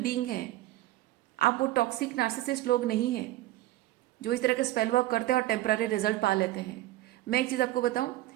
हैं। आप वो टॉक्सिक नार्सिसिस्ट लोग नहीं हैं जो इस तरह के स्पेल वर्क करते हैं और टेम्पररी रिजल्ट पा लेते हैं। मैं एक चीज़ आपको बताऊं,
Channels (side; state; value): left; quieter; 16.0 dB